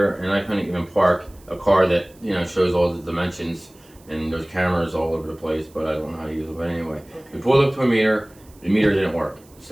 and I couldn't even park a car that, shows all the dimensions, and there's cameras all over the place, but I don't know how to use it. But anyway, we pulled up to a meter. The meter didn't work.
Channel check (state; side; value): noise; right; hiss, 28 dB below the sound